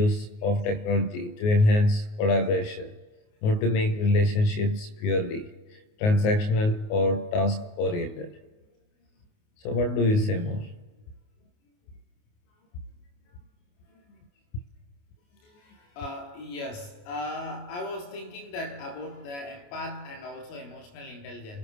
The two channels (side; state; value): right; late; 28 ms